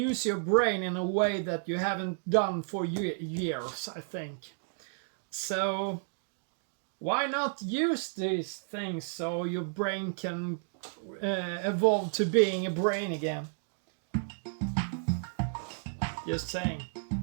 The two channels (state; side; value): silent; left; digital silence